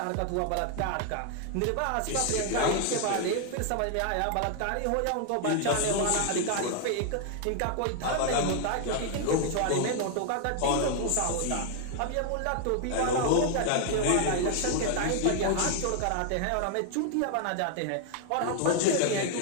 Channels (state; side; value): different; both; correlation 0.00